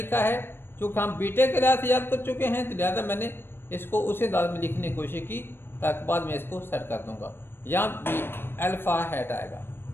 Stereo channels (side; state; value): right; late; 0.10 ms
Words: है, चूँकि हम बीटे के लिहाज से याद कर चुके हैं तो लिहाजा मैंने इसको उसी अंदाज में लिखने की कोशिश की ताकि बाद में इसको सेट कर दूंगा। यहाँ भी अल्फ़ा हैट आएगा,